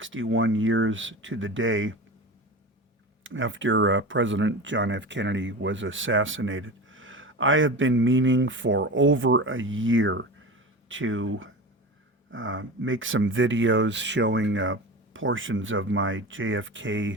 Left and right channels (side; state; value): both; normal; correlation 0.29